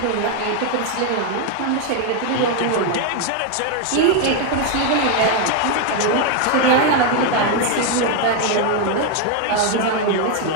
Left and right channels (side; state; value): both; different; correlation 0.01